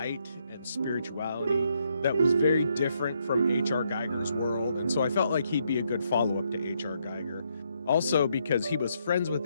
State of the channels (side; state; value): both; inverted; correlation -0.76